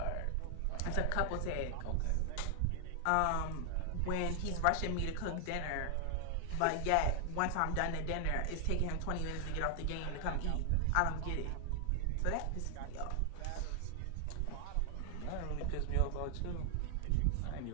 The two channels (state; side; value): different; both; correlation 0.00